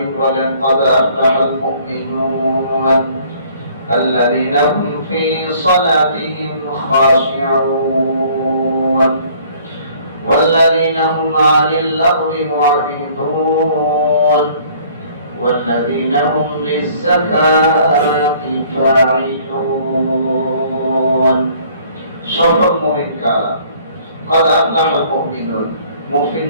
বলেন, قد أفلح المؤمنون الذين هم في صلاتهم خاشعون والذين هم عن اللغو معرضون والذين هم للزكاة فاعلون। সফল মুমিন কারা? قد أفلح المؤمنون,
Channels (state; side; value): inverted; both; correlation -0.57